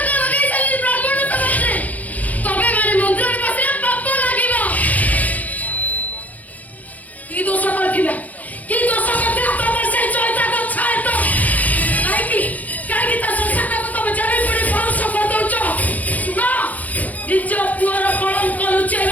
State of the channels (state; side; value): late; right; 0.077 ms